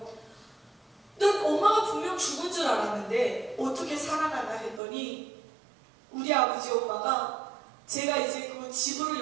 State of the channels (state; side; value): drops out; left; at 4.8 s